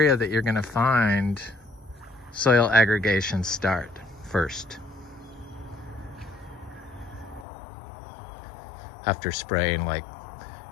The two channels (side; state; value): right; drops out; at 7.5 s